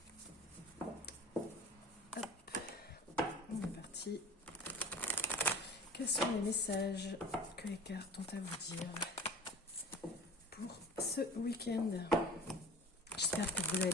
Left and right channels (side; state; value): both; normal; correlation 0.42